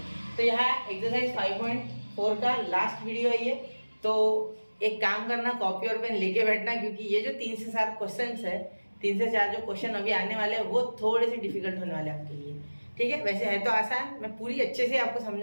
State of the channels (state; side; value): inverted; both; correlation -1.00